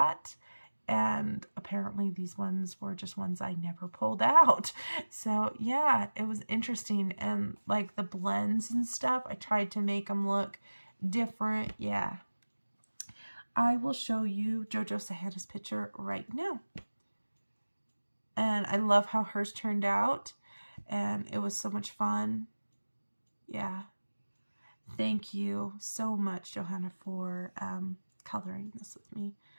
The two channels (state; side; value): inverted; both; correlation -1.00